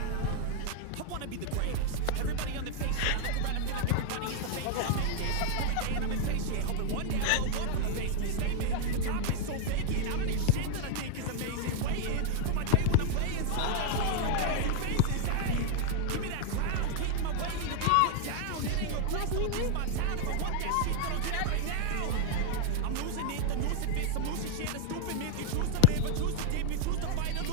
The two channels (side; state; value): both; different; correlation 0.00